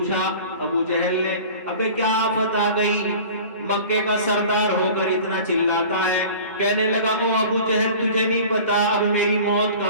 ابو جہل نے، ابے کیا آفت آ گئی، مکے کا سردار ہو کر اتنا چلاتا ہے؟ کہنے لگا او ابو جہل تجھے نہیں پتا اب میری موت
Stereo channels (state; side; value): inverted; both; correlation -0.42